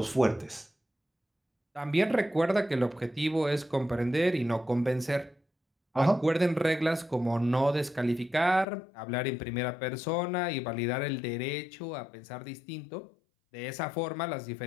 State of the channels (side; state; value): right; drops out; at 8.7 s